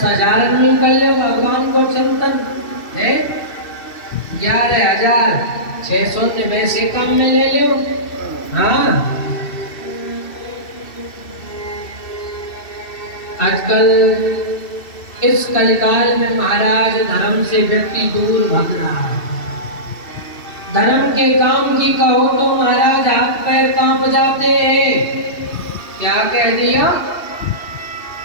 में कर लो भगवान को चिंतन है, 11,600 ने वैसे काम में ले लो। हाँ, आजकल इस कलिकाल में महाराज धर्म से व्यक्ति दूर भाग रहा है। धर्म के काम की कहो तो महाराज हाथ पैर कांप जाते हैं। क्या कह दिया?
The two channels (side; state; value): right; late; 2.7 ms